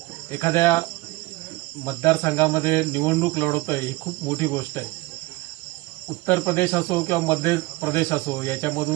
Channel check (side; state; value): left; quieter; 21.4 dB